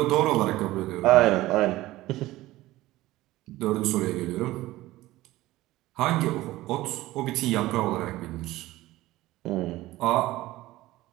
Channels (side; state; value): left; quieter; 17.2 dB